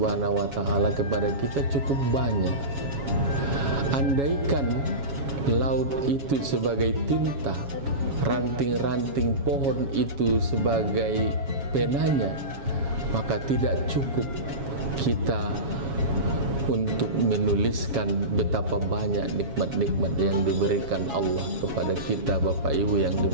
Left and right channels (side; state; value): left; late; 7.2 ms